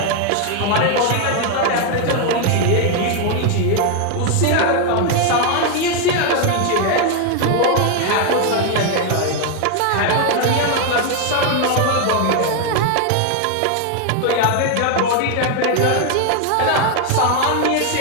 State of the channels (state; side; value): different; both; correlation 0.01